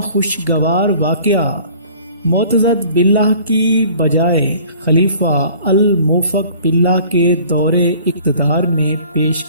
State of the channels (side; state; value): both; inverted; correlation -0.50